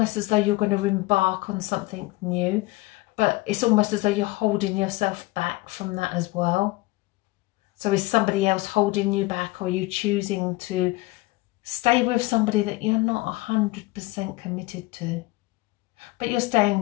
as though you're going to embark on something new, but it's almost as though you're holding yourself back from that as well. So is somebody else holding you back, or are you choosing to stay with somebody that you're not 100% committed to? But you're staying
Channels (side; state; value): right; quieter; 21.0 dB